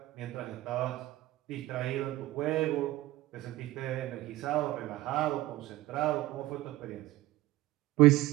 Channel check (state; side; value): quieter; left; 17.1 dB